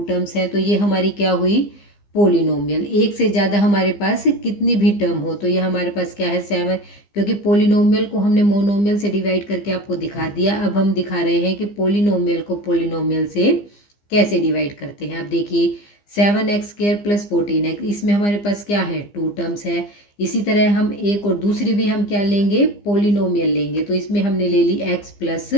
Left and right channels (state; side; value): late; right; 15 ms